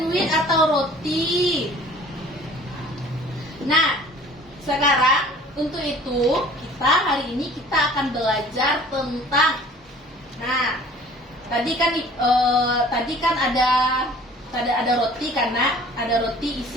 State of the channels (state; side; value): normal; both; correlation 0.49